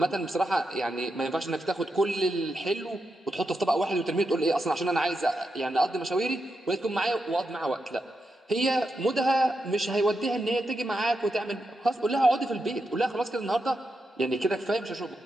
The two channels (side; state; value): both; normal; correlation 0.86